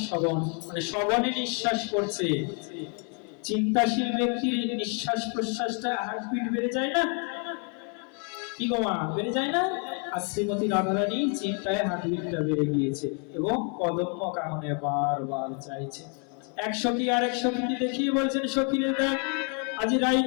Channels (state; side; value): quieter; right; 39.3 dB